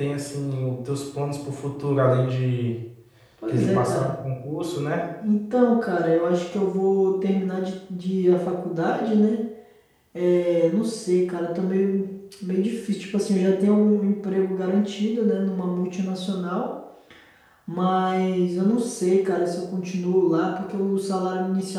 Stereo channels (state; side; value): identical; both; correlation 1.00